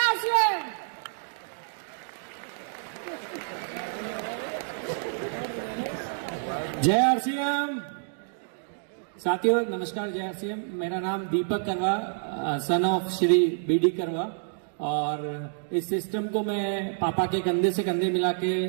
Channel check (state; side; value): silent; left; digital silence